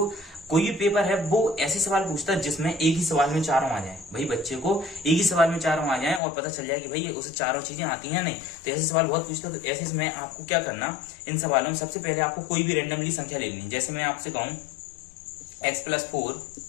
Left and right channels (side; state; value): right; drops out; at 6.2 s